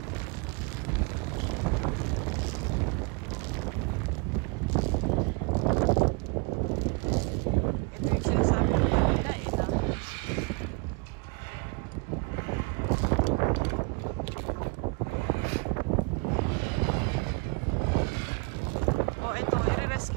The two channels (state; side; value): quieter; left; 30.2 dB